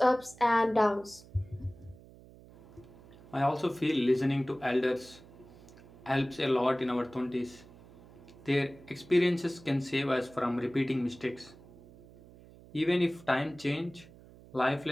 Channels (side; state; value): right; noise; hum, 21 dB below the sound